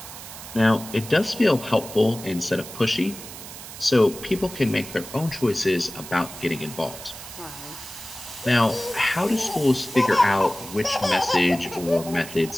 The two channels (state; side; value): noise; right; hiss, 13 dB below the sound